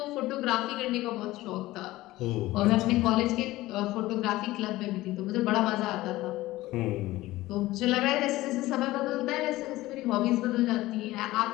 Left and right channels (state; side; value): quieter; right; 17.5 dB